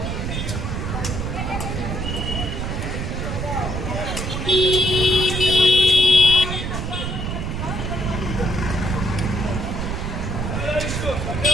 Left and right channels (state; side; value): noise; right; rumble, 3 dB below the sound